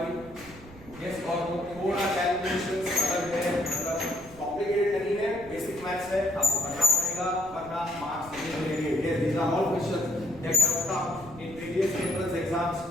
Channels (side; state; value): right; noise; rumble, 19 dB below the sound